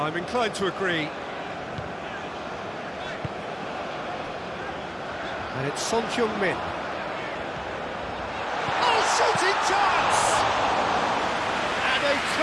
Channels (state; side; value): identical; both; correlation 1.00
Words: inclined to agree. And it's Son Heung-min. Oh, shooting chance! And a